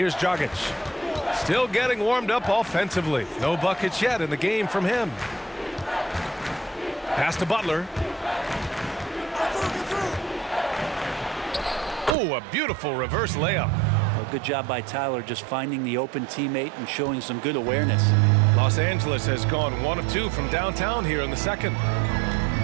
Dragic. Still getting warmed up offensively. No buckets yet in the game from him. Pass to Butler. Oh, a beautiful reverse layup. Well, good job by Tyler just finding the open teammate and showing some good awareness. Los Angeles has gone 1 of 2 from downtown here in the second.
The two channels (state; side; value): drops out; left; at 12.2 s